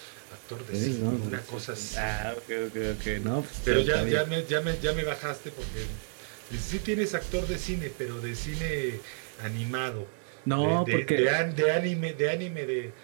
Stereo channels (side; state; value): left; silent; digital silence